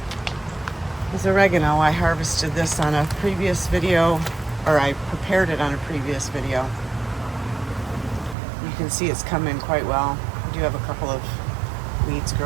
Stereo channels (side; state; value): left; drops out; at 8.3 s